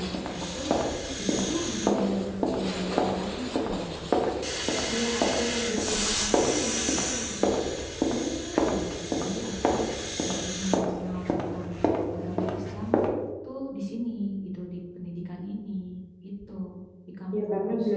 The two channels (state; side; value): identical; both; correlation 1.00